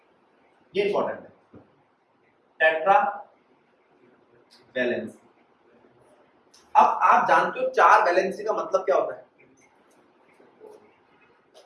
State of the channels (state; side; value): identical; both; correlation 1.00